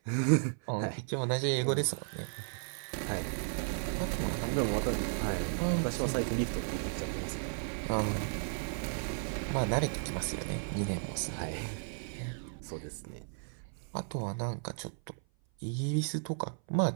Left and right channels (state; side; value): silent; left; 55 dB below the other